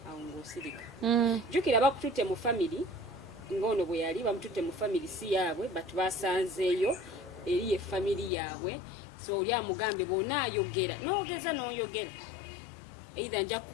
awo ng'osirika. Jjukira bakututte mu family ng'ono bwe yali bamututte mu family si yaabwe but basanzeeyo eri ye family yaabwe. So oli amugambe bw'onaayogera n'ogeza n'oyogera either nja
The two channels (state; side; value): drops out; right; at 8.3 s